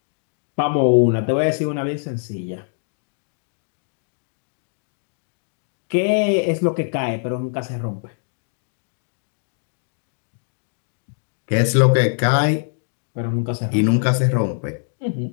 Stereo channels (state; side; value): silent; right; digital silence